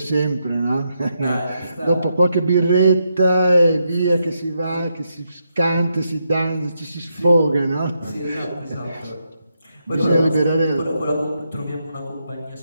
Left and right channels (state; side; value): inverted; both; correlation -0.81